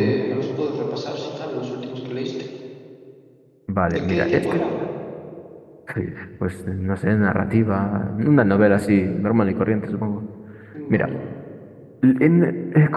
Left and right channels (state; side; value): identical; both; correlation 1.00